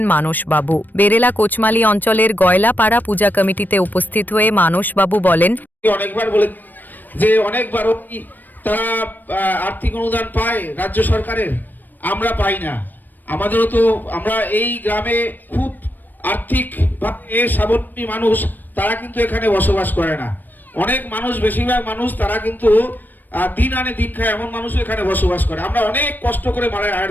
মানসবাবু। বেরেলা কোচমালি অঞ্চলের গয়লাপাড়া পূজা কমিটিতে উপস্থিত হয়ে মানসবাবু বলেন, অনেকবার বলে যে অনেকবার তারা আর্থিক অনুদান পায় রাজ্য সরকারের, আমরা পাই না। আমাদেরও তো আমরা এই গ্রামে খুব আর্থিক স্বাবলম্বী মানুষ, তারা কিন্তু এখানে বসবাস করে না। অনেক মানুষ, বেশিরভাগ মানুষ তারা কিন্তু দিন আনে দিন খায় এমন মানুষও এখানে বসবাস করে। আমরা অনেক কষ্ট করে মায়ের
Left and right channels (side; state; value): right; late; 0.089 ms